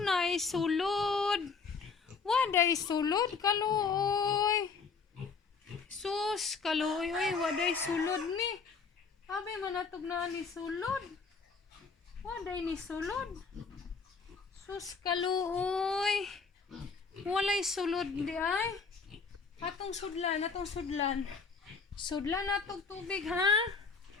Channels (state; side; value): quieter; right; 5.1 dB